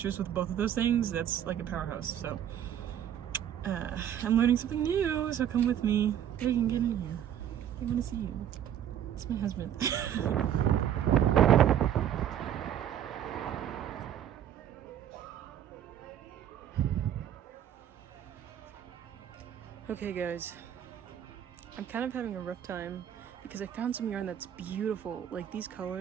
with both of those things, that's like a powerhouse. So I'm learning something new, so come with me. You can get in here. I want to see you. It's my husband. Okay guys, I'm kind of having a rough time because I found some yarn that's beautiful. Like, these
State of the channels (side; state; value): left; quieter; 10.1 dB